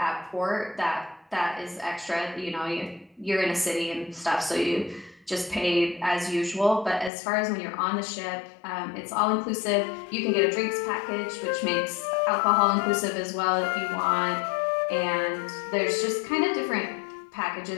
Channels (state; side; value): drops out; right; at 7.1 s